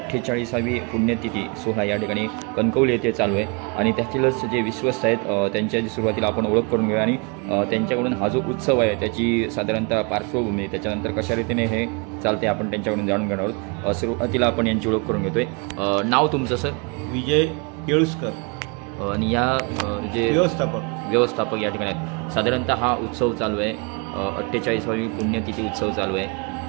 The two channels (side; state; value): left; quieter; 31.7 dB